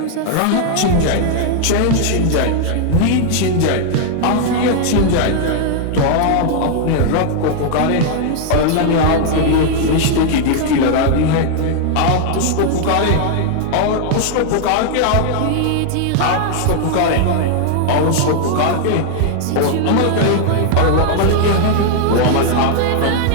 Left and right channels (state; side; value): different; both; correlation 0.00